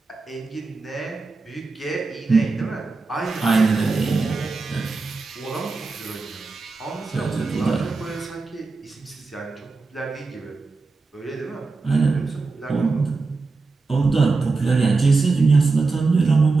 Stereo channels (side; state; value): left; quieter; 3.9 dB